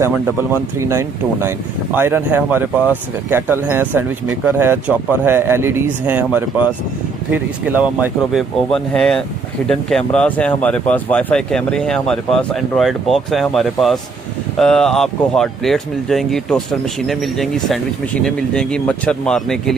3929। आयरन है हमारे पास, केटल हैं, सैंडविच मेकर है, चॉपर है, एलईडीज़ हैं हमारे पास फिर इसके अलावा माइक्रोवेव ओवन है, हिडन कैमरास हैं हमारे पास, वाईफाई कैमरे हैं हमारे पास, एंड्रॉयड बॉक्स है हमारे पास, आपको हॉट प्लेट्स मिल जाएंगी, टोस्टर मशीनें मिल जाएंगी, सैंडविच मशीनें मिल जाएंगी, मच्छर मारने के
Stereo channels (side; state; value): left; quieter; 4.6 dB